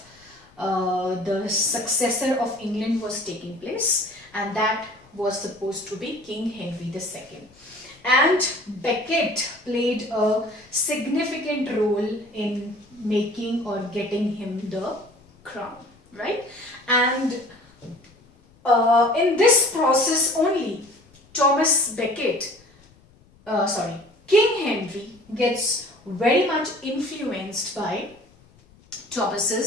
the successor of England was taking place, and that was supposed to be King Henry II. And Becket played a significant role in making or getting him the crown, right? And in this process only, King Henry gets very much influenced by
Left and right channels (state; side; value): noise; left; rumble, 29 dB below the sound